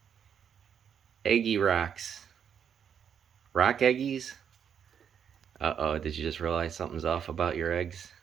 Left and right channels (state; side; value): quieter; left; 8.0 dB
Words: Eggy rocks. Rock eggies? Uh-oh, did you just realize something's off about your eggs?